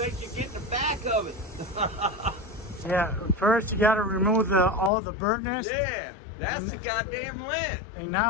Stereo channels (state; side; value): drops out; right; at 4.9 s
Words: you're getting the back of it. Yeah, first you got to remove all the burntness. Yeah, that's the goddamn lint. And